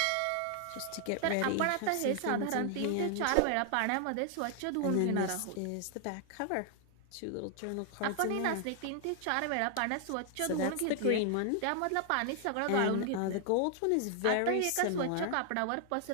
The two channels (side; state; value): both; different; correlation 0.00